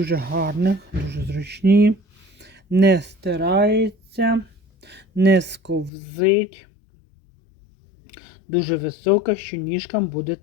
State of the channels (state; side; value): drops out; right; at 5.9 s